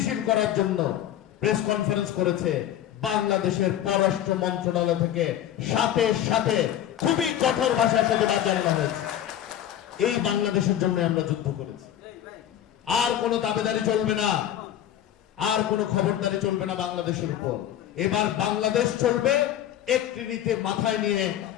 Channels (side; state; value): right; quieter; 11.2 dB